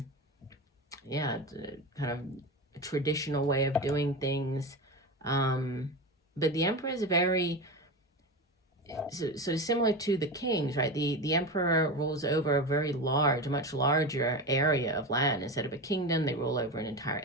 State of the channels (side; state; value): both; normal; correlation 0.22